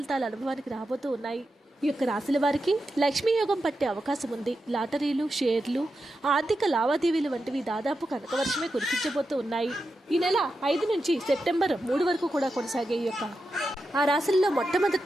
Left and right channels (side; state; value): both; normal; correlation 0.89